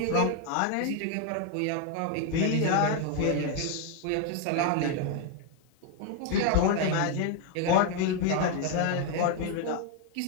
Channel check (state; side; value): different; both; correlation 0.01